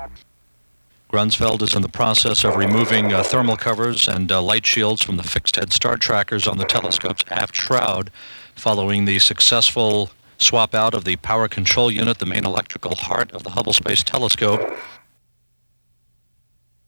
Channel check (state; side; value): inverted; both; correlation -1.00